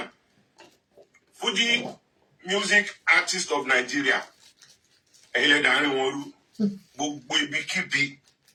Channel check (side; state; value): both; identical; correlation 1.00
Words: Fuji Music Artist of Nigeria. Ẹ̀yin lẹ dàárín wọn rú. Gbogbo ibikíbi